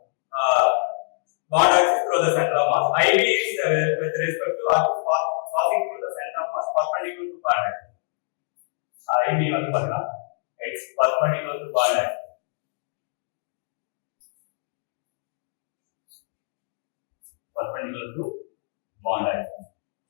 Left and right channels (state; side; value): silent; right; digital silence